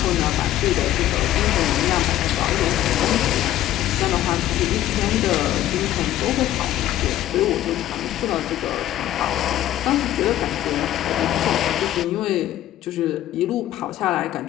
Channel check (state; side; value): quieter; right; 13.2 dB